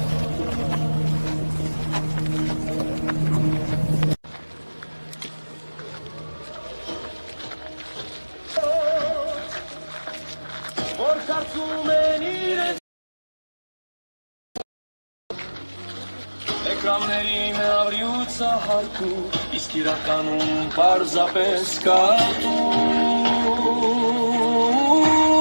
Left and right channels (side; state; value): both; inverted; correlation -1.00